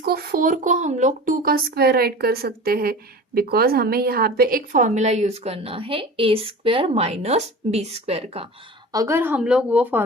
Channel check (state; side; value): normal; both; correlation 0.36